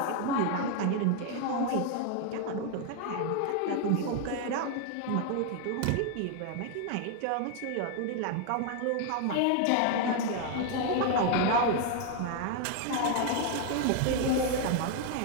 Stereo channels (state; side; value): different; both; correlation 0.00